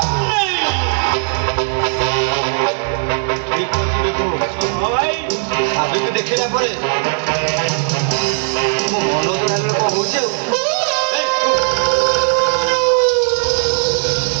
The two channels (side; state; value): left; silent; digital silence